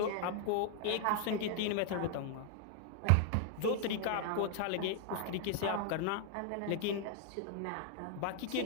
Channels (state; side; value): different; both; correlation 0.00